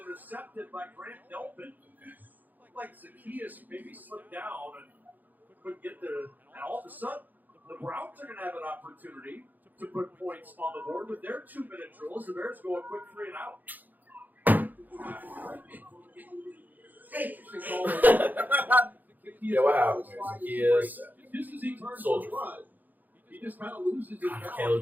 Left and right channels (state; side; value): late; left; 0.084 ms